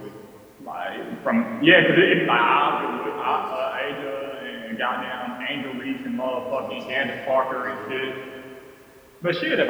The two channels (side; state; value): both; identical; correlation 1.00